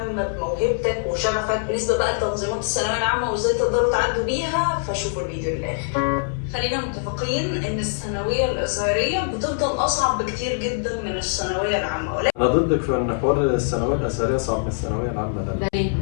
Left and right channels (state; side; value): silent; right; 61 dB below the other